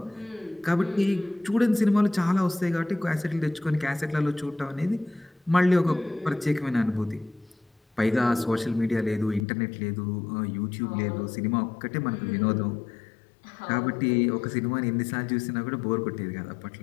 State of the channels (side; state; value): right; drops out; at 9.5 s